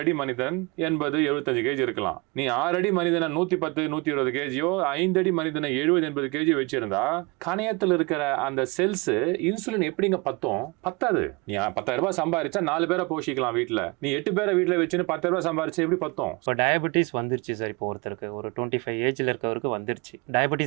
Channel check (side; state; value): left; quieter; 27.5 dB